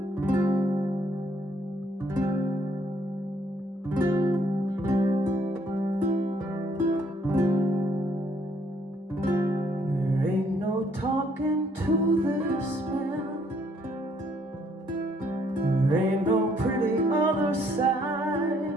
ain't no talking to this man. There ain't no pretty other side.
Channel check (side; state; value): both; normal; correlation 0.67